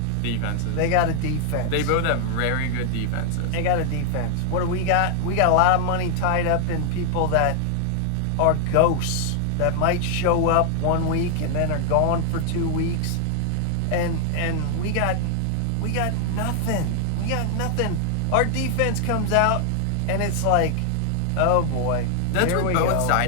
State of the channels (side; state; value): both; different; correlation 0.00